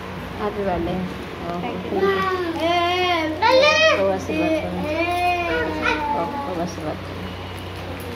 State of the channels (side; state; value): both; identical; correlation 1.00